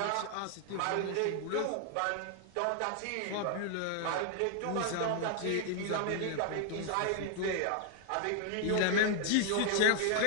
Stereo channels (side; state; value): both; different; correlation 0.00